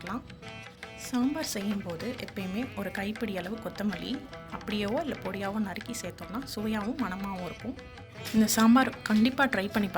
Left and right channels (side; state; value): both; identical; correlation 1.00